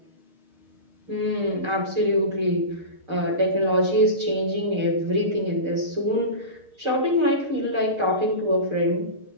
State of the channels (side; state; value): left; late; 6.5 ms